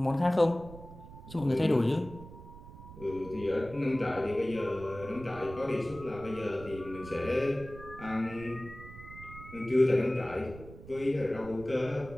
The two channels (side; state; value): right; noise; rumble, 15 dB below the sound